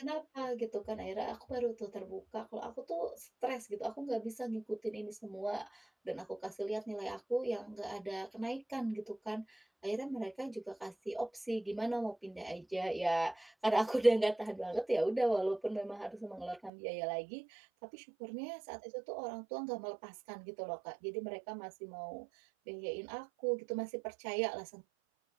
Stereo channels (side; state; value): left; drops out; at 16.7 s